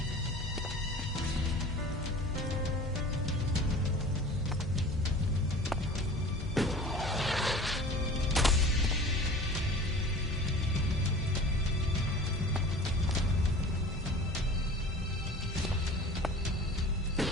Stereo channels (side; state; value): both; normal; correlation 0.41